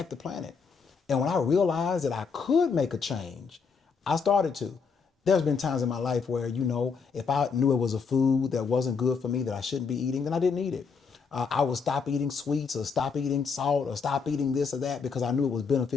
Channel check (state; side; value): quieter; right; 5.5 dB